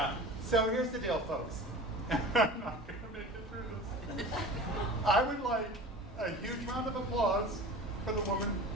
So here's the deal, folks. I'm not going to make it through this. I would like a huge round of applause for the woman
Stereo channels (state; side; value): normal; both; correlation 0.37